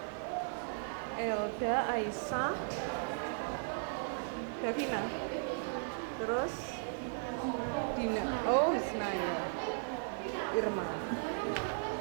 Elda, Aisyah, Davina. Terus Dina. Oh, Ismail. Irma.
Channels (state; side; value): silent; left; 53 dB below the other